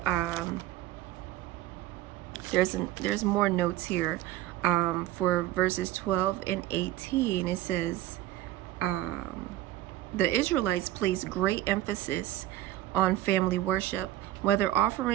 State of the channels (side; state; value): left; quieter; 14.6 dB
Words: there's more notes here. For verses 12 and 18, it says, the Israelites placed great emphasis on family worship. Whether